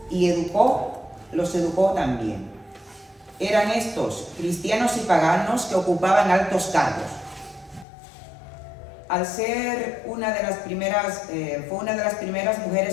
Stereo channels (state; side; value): drops out; right; at 7.9 s